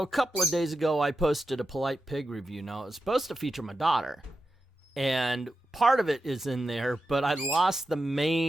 a couple of days ago I posted a Polite Pig review. Now it was supposed to feature my daughter, and part of it is in there, but I lost the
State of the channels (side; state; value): both; normal; correlation 0.89